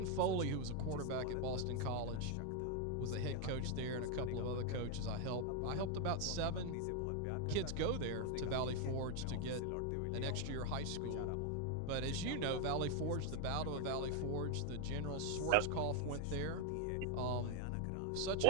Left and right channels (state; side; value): different; both; correlation 0.01